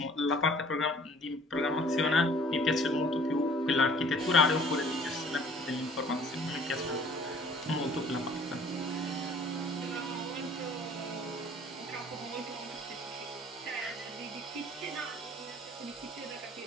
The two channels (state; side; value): normal; both; correlation 0.53